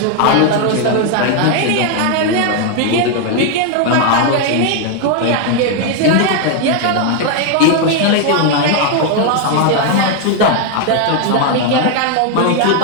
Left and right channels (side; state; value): both; different; correlation 0.01